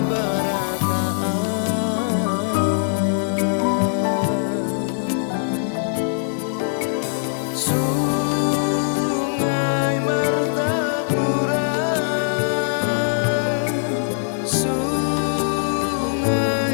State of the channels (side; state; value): right; silent; digital silence